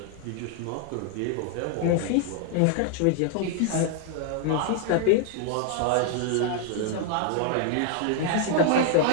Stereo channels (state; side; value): different; both; correlation 0.00